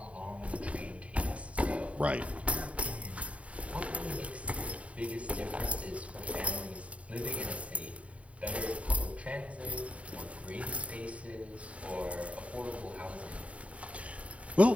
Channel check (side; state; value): left; late; 0.065 ms